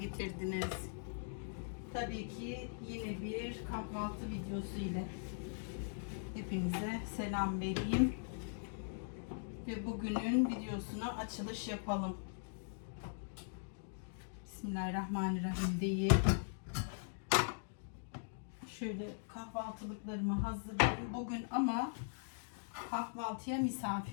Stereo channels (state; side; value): silent; right; digital silence